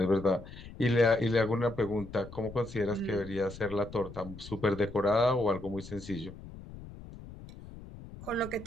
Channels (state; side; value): noise; left; rumble, 15 dB below the sound